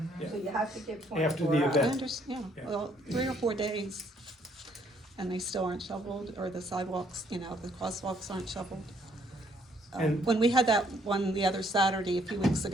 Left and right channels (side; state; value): both; normal; correlation 0.67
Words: Yeah. So you have to give After 24 the hours. I event. understand, Yeah. well, 3 or 4 days, and they still aren't shoveled, or the sidewalks, the crosswalks aren't shoveled. And- When we had that one the other Saturday, a few weeks